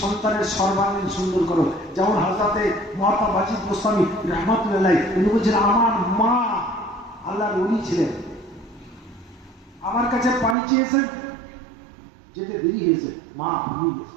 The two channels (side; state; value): left; drops out; at 10.6 s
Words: সর্বাঙ্গীন সুন্দর করো। যেমন হযরতে মহাত্মা বাজিদ গোস্বামী রহমাতুল্লাহ উনি বলছেন, আমার মা আল্লাহর ওলি ছিলেন, আমার কাছে পানি চেয়েছেন, যেতে দেরি হয়েছে, মা ঘুমিয়ে